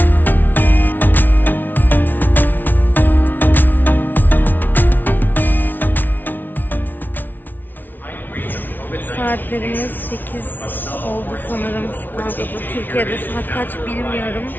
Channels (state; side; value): late; right; 0.088 ms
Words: Saatlerimiz 8 oldu sanırım Chicago'da. Türkiye'de saat kaç bilmiyorum.